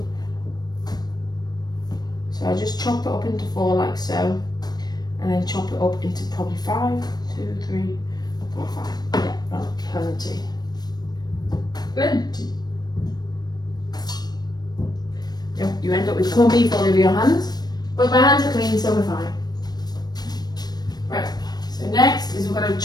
So I just chop it up into 4 like so, and then chop it up into probably 5, 2, 3, 4, 5. Yeah, that's plenty. Plenty. Yep, you end up with corned beef all over your hands, but my hands are clean, so we're fine. Right, so next is we're going to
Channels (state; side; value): late; right; 0.19 ms